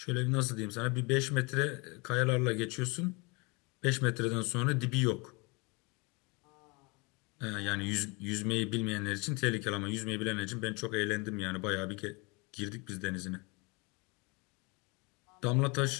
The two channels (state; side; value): quieter; right; 28.7 dB